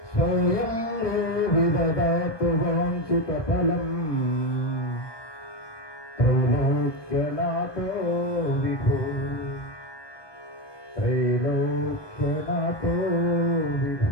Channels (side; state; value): right; late; 1.2 ms